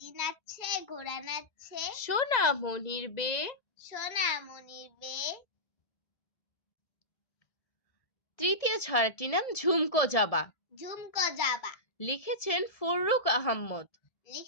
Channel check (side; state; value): right; late; 1.7 ms